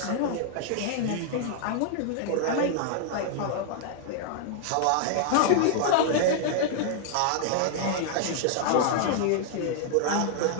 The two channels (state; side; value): different; both; correlation -0.01